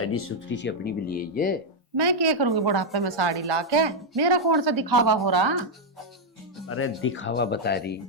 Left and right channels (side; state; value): both; normal; correlation -0.01